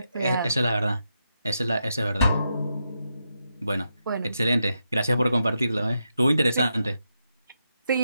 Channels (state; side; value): inverted; both; correlation -0.85